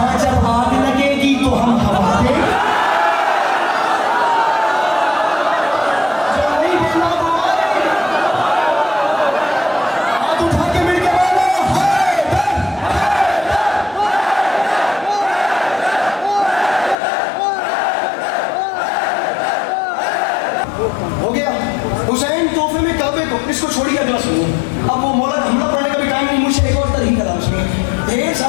जब आग लगेगी तो हम हवा देंगे। हाथ उठा के मिल के बोलो हो गया। हुसैन तोहफे में काबे को, इसको छोड़िए अगला सुनो। अब वो मौला हमला पढ़ने का भी टाइम नहीं, मुझे एक और तरीका था उसमें। ढेर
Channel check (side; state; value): right; drops out; at 16.9 s